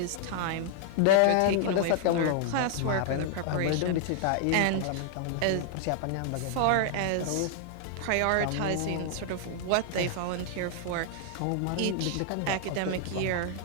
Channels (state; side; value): different; both; correlation -0.01